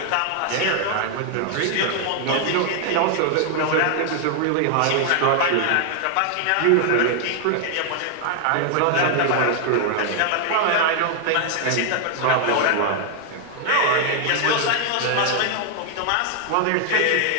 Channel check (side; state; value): both; different; correlation 0.00